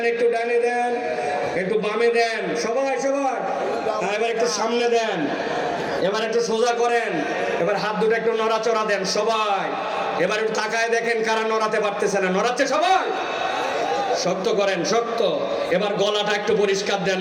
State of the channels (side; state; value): both; identical; correlation 1.00